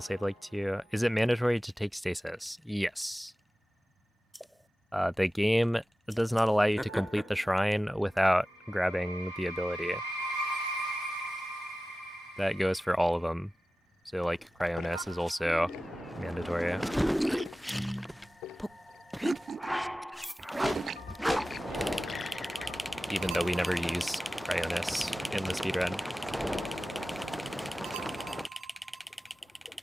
save like 2. Is it mandatory to take stasis? Yes. The game does not allow you to complete the shrine without grabbing the ability. That goes for all of them. So like Cryonis is also mandatory. Even though we never use Cryonis in the speedrun.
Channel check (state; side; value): normal; both; correlation 0.95